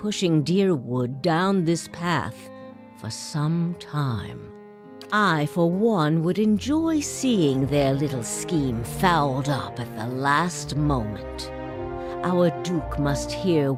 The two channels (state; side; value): identical; both; correlation 1.00